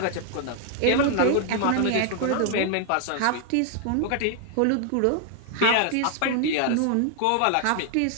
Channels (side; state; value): both; different; correlation 0.00